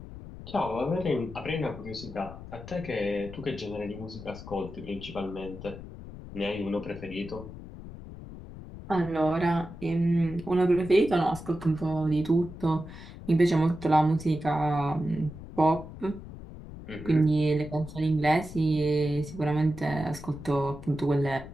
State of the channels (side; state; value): left; noise; rumble, 13 dB below the sound